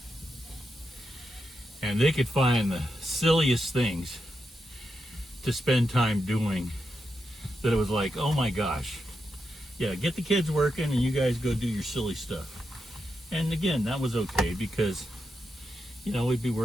and they could find the silliest things to spend time doing, that it was like, oh my gosh, yeah, get the kids working and you guys go do your silly stuff. And again, that was okay, because, you know, we'd be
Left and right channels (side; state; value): both; normal; correlation 0.86